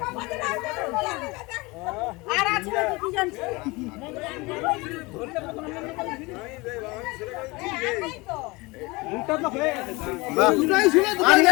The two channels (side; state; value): right; quieter; 24.2 dB